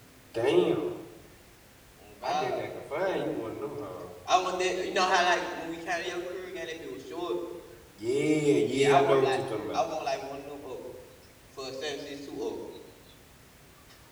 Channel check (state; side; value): identical; both; correlation 1.00